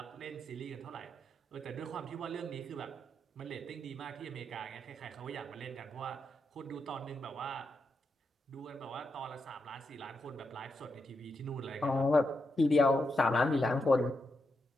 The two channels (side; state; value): both; normal; correlation 0.84